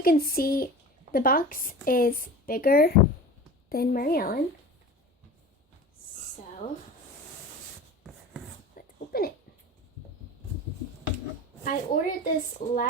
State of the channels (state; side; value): normal; both; correlation 0.35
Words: can see the box is bigger than Mary Ellen. So open it. I ordered this